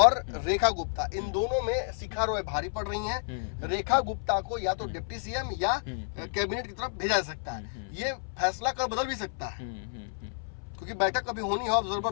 रेखा गुप्ता, इन दोनों में शिखा रॉय भारी पड़ रही हैं। रेखा गुप्ता को या तो डिप्टी सीएम या कैबिनेट की तरफ भेजा जा सकता है। ये फैसला कर बदल भी सकता है, क्योंकि बैठक अभी होनी है, ऑब्जर्वर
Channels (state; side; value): silent; right; 58 dB below the other